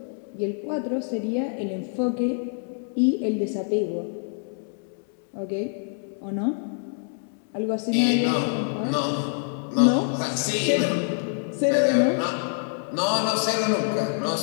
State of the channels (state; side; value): silent; right; 61 dB below the other